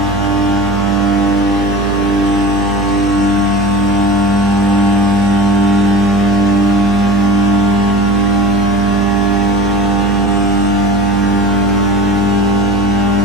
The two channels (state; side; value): noise; right; hum, 6 dB below the sound